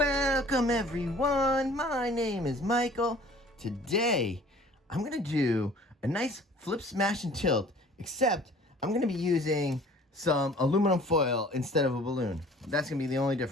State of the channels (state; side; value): normal; both; correlation 0.50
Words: everyone, my name is Michael. Today I'm going to do a nice flip, smash, and tilt, except I'm going to be using some aluminum foil instead of a balloon. That's going to be the only